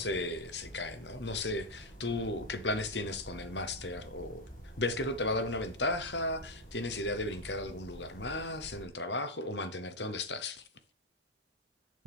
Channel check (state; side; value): normal; both; correlation 0.04